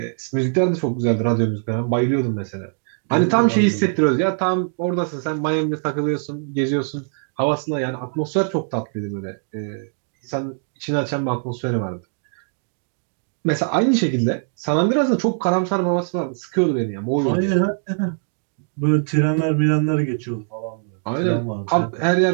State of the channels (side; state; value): left; silent; digital silence